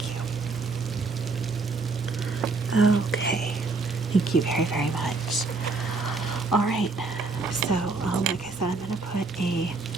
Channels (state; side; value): quieter; left; 3.9 dB